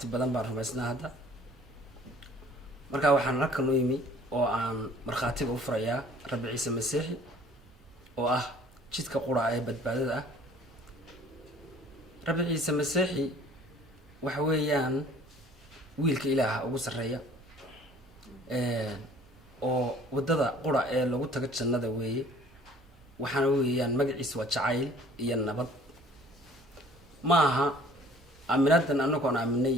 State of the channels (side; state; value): both; normal; correlation 0.53